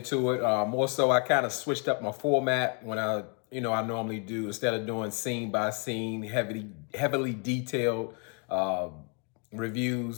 it, more so, I kind of switched up my format when I normally do, instead of doing scene by scene, heavily detailed uh,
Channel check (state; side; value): quieter; right; 37.8 dB